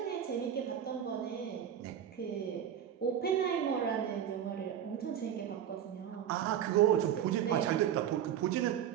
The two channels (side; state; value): left; quieter; 9.7 dB